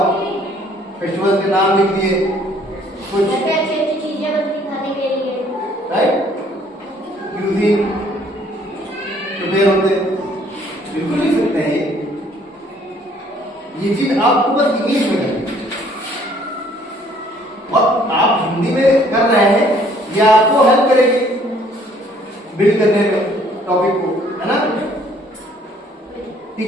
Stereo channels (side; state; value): both; normal; correlation 0.60